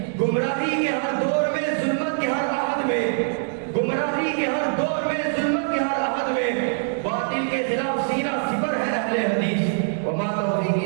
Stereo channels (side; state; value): left; silent; digital silence